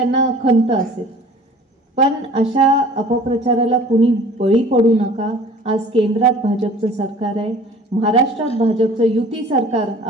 खंत असेल. पण अशा अपप्रचाराला कुणी बळी पडू नका. आज केंद्रात भाजपचं सरकार आहे, महाराष्ट्रात भाजपचं युती सरकार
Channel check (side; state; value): both; normal; correlation 0.47